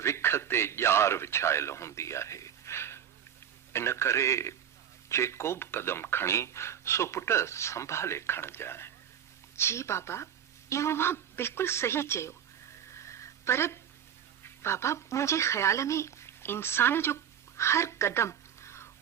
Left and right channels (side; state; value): left; quieter; 9.1 dB